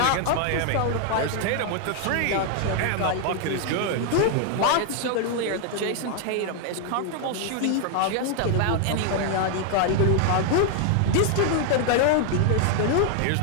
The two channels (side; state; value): both; different; correlation 0.00